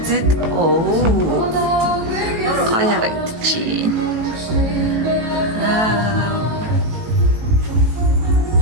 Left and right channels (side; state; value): left; late; 18 ms